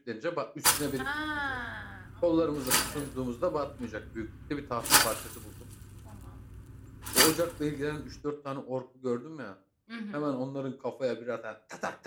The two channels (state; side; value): identical; both; correlation 1.00